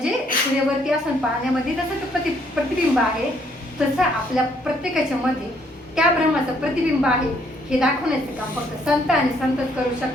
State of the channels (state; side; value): normal; both; correlation 0.67